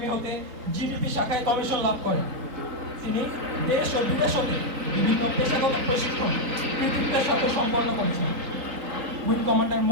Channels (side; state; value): left; late; 3.7 ms